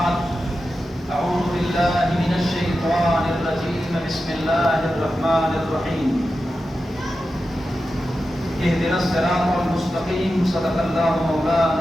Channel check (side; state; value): both; normal; correlation 0.91